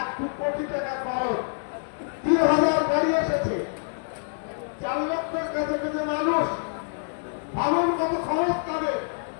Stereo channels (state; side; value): silent; right; digital silence